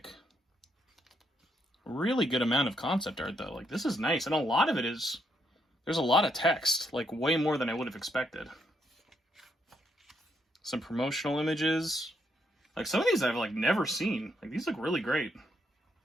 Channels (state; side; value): normal; both; correlation 0.76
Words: Really good amount of concept art, though. Like, this is nice. And a lot of it is... There's a lot of text. Like, way more than I would have expected. Some promotional images. Like, some of these I've, like, never seen. Like, these look really great.